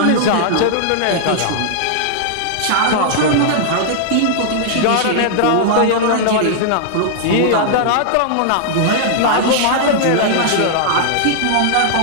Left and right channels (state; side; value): different; both; correlation -0.01